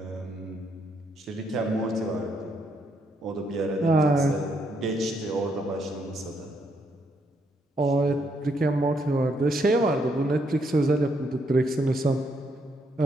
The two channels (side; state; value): both; normal; correlation 0.75